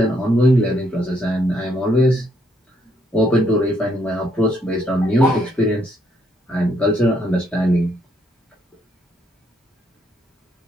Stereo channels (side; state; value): both; normal; correlation 0.72